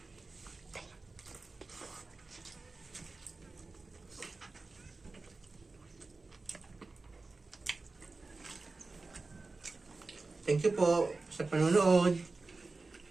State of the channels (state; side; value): quieter; left; 3.7 dB